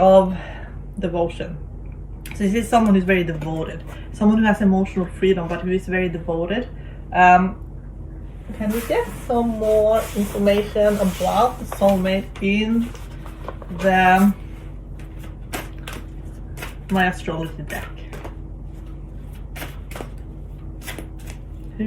devotion. So this is someone who's very devoted, someone who has emotional freedom, but who is very devoted. Can we get some more information about the soulmate in my astrology deck? Who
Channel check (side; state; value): both; identical; correlation 1.00